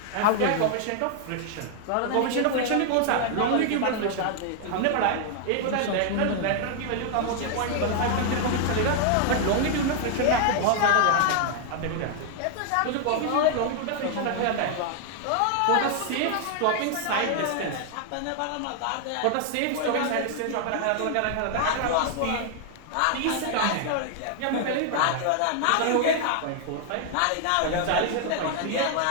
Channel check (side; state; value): both; different; correlation 0.00